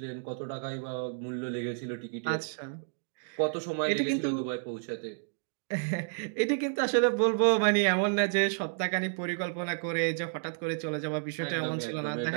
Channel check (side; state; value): left; silent; digital silence